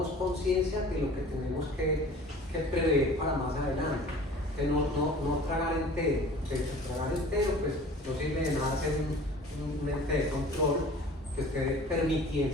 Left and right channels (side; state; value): both; normal; correlation 0.45